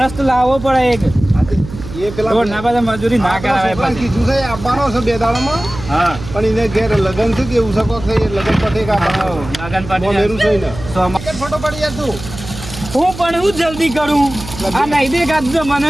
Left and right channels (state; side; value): noise; right; hum, 12 dB below the sound